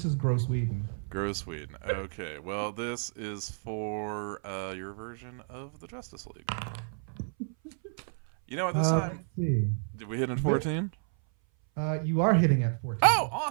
is Gross Whedon. Gross Sweden. Okay, well, this is for your version of the Justice League. You know what, this time, Let's see. did we hit in 14? You are hitting at 14. Oh,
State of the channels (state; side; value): silent; left; 57 dB below the other